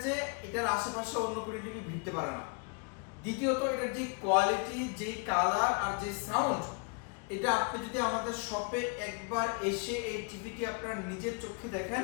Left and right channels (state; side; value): quieter; right; 34.0 dB